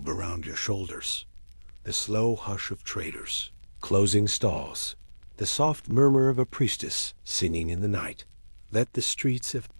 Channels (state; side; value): inverted; both; correlation -1.00